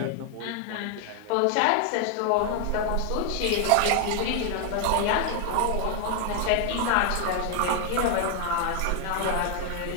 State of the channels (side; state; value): both; different; correlation 0.00